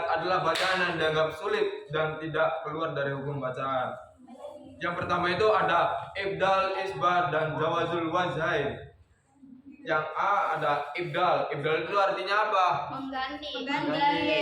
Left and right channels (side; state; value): both; identical; correlation 1.00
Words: adalah bacaan yang dianggap sulit dan tidak keluar dari hukum bacaan. Yang pertama itu ada ibdal, isbat, dan jawazul wajhain. Yang A ada ibdal. Ibdal itu artinya apa? Mengganti.